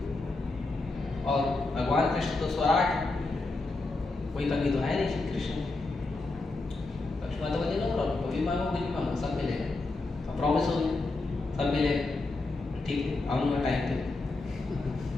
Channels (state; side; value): quieter; right; 3.3 dB